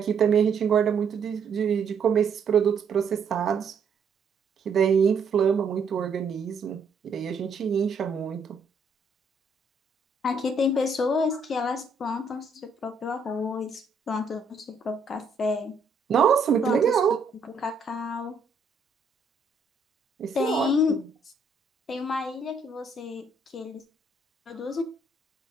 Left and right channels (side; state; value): left; quieter; 3.9 dB